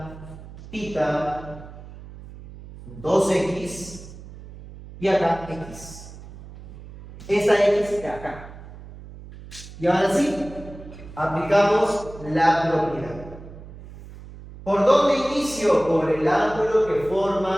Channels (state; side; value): noise; right; hum, 16 dB below the sound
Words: tita. 2x y acá x. Esta x de acá. Y ahora sí, aplicamos la propiedad. ¿Por dónde inicio? Por el ángulo que